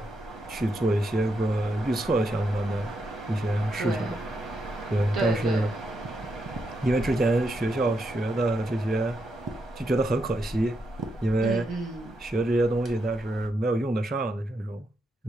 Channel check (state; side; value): normal; both; correlation 0.82